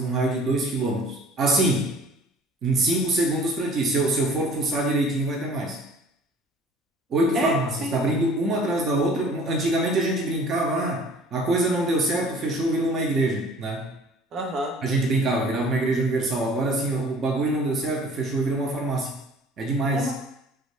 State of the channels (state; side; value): normal; both; correlation 0.50